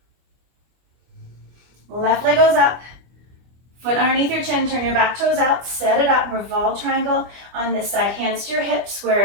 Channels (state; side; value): late; left; 25 ms